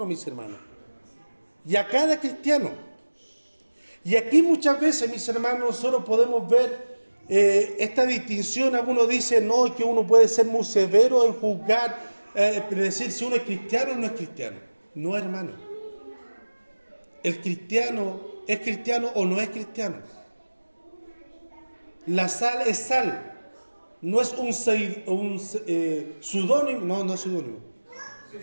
mis hermanos. Y a cada cristiano. Y aquí muchas veces, mis hermanos, nosotros podemos ver esta distinción. Algunos dicen, no, que uno puede ser muy severo en juzgar, decir si uno es cristiano o no es cristiano. No, hermano. El cristiano es cristiano o no es cristiano. La sal es sal. No es un pseudónimo, no es pseudónimo.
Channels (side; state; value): both; inverted; correlation -1.00